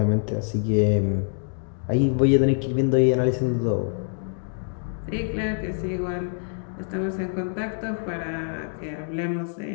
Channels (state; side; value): silent; right; digital silence